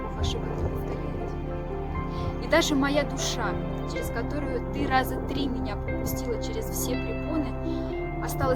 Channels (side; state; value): both; identical; correlation 1.00